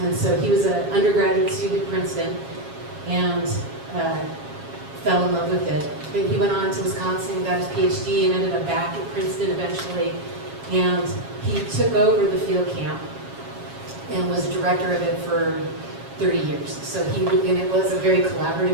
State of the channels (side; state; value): left; late; 7.3 ms